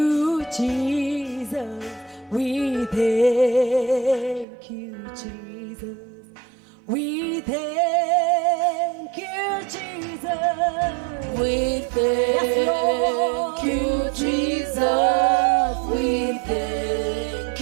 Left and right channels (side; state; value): left; drops out; at 4.5 s